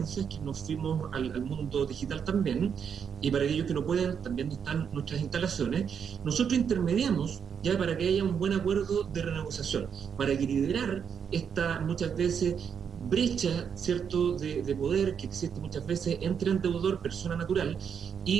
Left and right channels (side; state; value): left; quieter; 7.3 dB